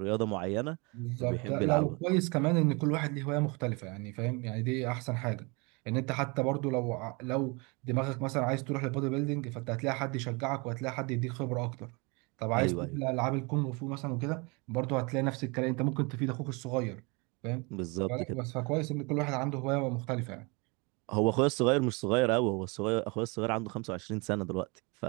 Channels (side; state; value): left; quieter; 29.2 dB